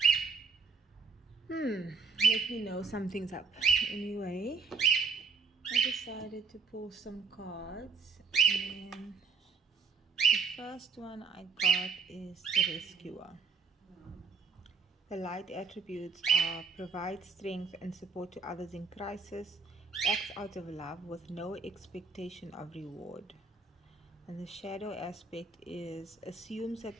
let me know something's up. Anyway, I decided to pull some cards, and the first one I got is the Rescuer. The light attributes are provide strength and support to others in crisis, acts out of love with no expectation of reward. And the shadow aspect is assumes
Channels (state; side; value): quieter; left; 4.8 dB